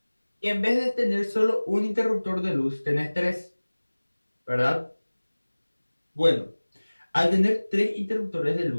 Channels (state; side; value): inverted; both; correlation -1.00